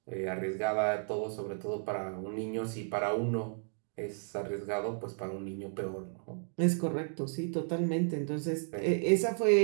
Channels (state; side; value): silent; left; 56 dB below the other